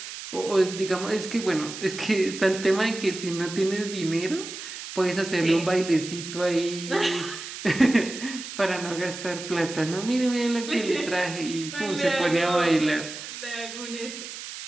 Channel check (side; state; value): right; noise; hiss, 10 dB below the sound